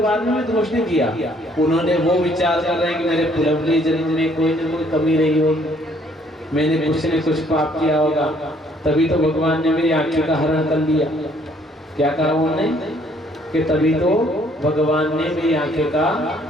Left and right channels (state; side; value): normal; both; correlation 0.64